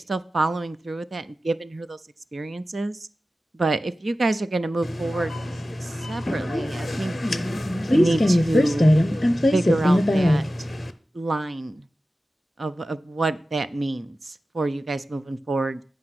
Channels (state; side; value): normal; both; correlation 0.95